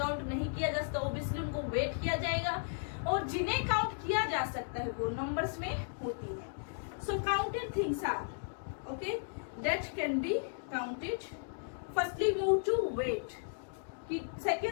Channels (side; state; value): right; silent; digital silence